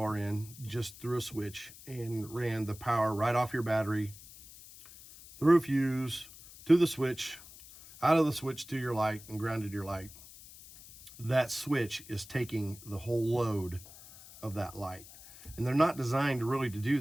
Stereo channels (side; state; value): left; noise; hiss, 18 dB below the sound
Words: in just through a switch and ran the power right off your battery, through a fuse, to the switch, out of the switch to your light, and grounded your light, that switch is taking the whole load of that light. And they're not designed really to do